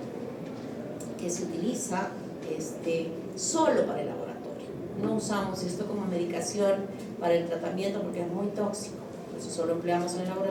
que se utiliza solo para el laboratorio. No usamos esto como medicación para el tratamiento porque es muy tóxico, por eso solo empleamos en el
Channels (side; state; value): both; identical; correlation 1.00